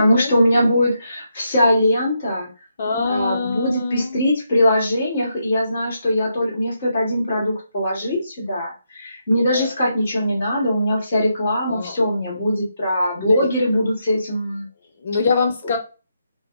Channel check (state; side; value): inverted; both; correlation -0.81